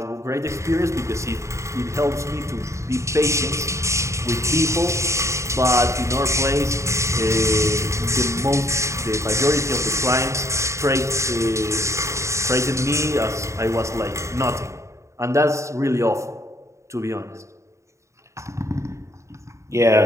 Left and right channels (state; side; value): late; left; 0.14 ms